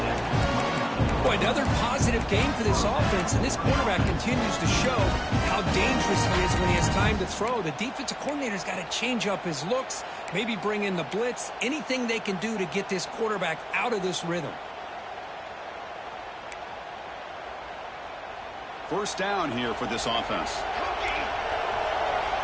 Boy, another positive game for this offense, and this quarterback continues to show how dangerous he is when he has time to throw. The defensive coordinator's got to change up his looks, maybe bring in the blitz, anything they can do to get this quarterback out of this rhythm. First down here for this offense.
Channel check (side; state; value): both; identical; correlation 1.00